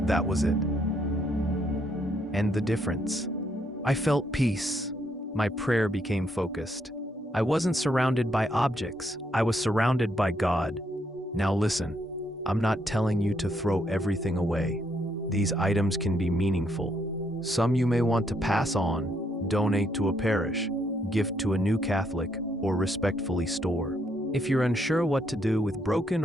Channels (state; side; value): normal; both; correlation 0.74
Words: That was it. And the difference. I felt peace. My prayer became focused. I wasn't surrounded by objects. I was surrounded by God. Now listen, I'm not telling you to throw everything away. These items can be meaningful. Some you may want to pass on, donate to a parish, gift to a new Catholic, or respectfully store. If you're unsure what to do with broken